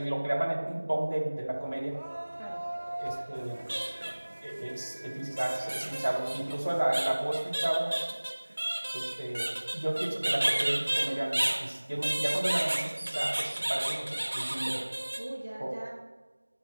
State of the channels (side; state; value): both; inverted; correlation -1.00